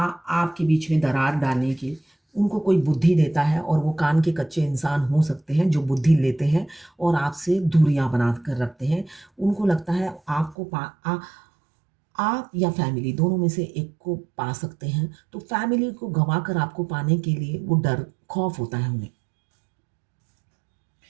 बीच में दरार डालने की। उनको कोई बुद्धि देता है और वो कान के कच्चे इंसान हो सकते हैं जो बुद्धि लेते हैं और आपसे दूरियां बना कर रखते हैं। उनको लगता है आप या फैमिली दोनों में से एक को पा सकते हैं, तो फैमिली को गंवा कर आपको पाने के लिए वो डर खौफ होता है उन्हें।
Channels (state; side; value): drops out; left; at 10.6 s